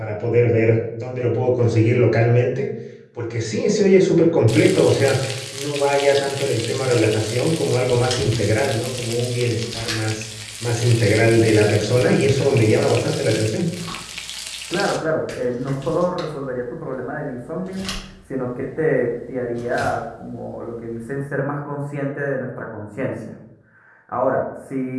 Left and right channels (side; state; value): both; identical; correlation 1.00